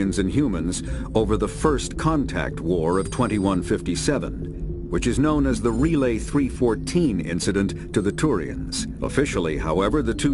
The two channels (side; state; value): both; identical; correlation 1.00